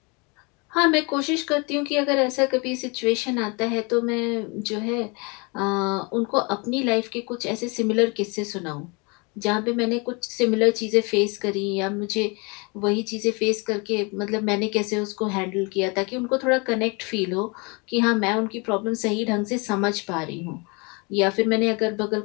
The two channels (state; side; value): quieter; right; 30.0 dB